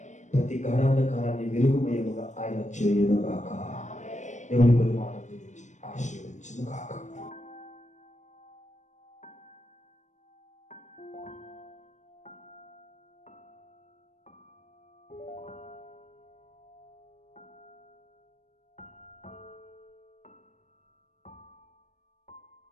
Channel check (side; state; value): right; late; 0.35 ms